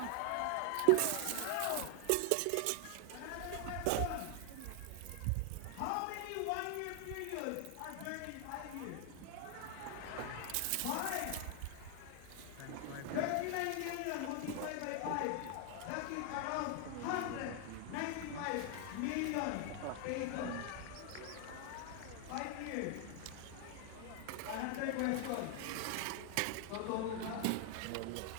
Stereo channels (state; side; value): different; both; correlation 0.00